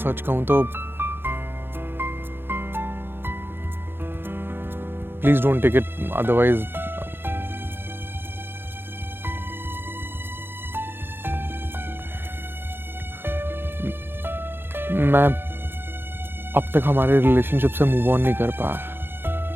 सच कहूं तो please don't take it, otherwise अब तक हमारे रिलेशनशिप से मूव ऑन नहीं कर पाया।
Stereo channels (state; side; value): late; left; 0.10 ms